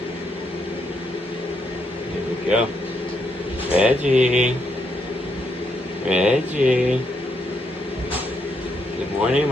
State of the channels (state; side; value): normal; both; correlation 0.77